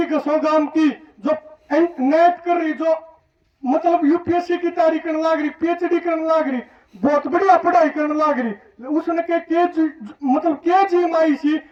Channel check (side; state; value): both; identical; correlation 1.00